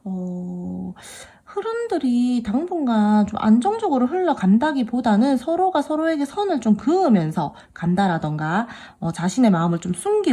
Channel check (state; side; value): identical; both; correlation 1.00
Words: 흐름들이 당분간 좀 안정적으로 흘러간다기보다는 서로가 서로에게 선을 좀 그으면서 간다라던가, 자신의 마음을 좀